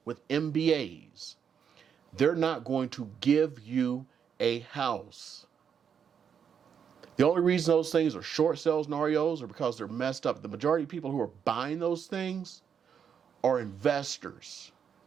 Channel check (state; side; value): quieter; left; 7.5 dB